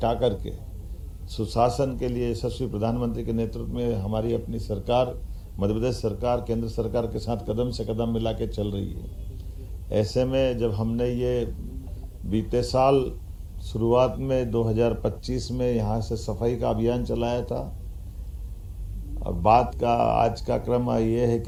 करके सुशासन के लिए यशस्वी प्रधानमंत्री के नेतृत्व में हमारी अपनी सरकार, मध्य प्रदेश सरकार केंद्र सरकार के साथ कदम से कदम मिला के चल रही है। ऐसे में जब हमने ये बीते साल शुरुआत में 2025 में यहाँ से सफाई का अभियान चलाया था, और बात का आज का क्रम ये है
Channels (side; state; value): both; identical; correlation 1.00